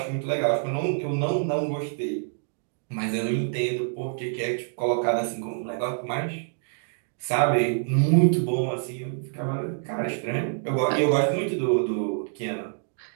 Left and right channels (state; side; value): silent; left; digital silence